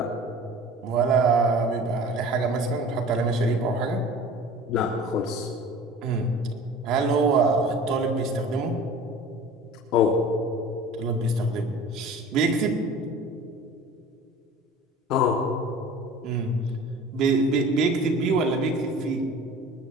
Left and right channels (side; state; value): both; normal; correlation 0.42